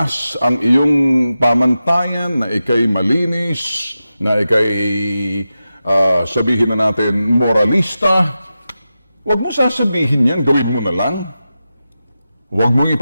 ang iyong pamantayan, na ikay malinis, na ikay sabihin na natin moralista, huwag mo sasabihin yan, gawin mo na lang. Huwag mong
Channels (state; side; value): inverted; both; correlation -0.92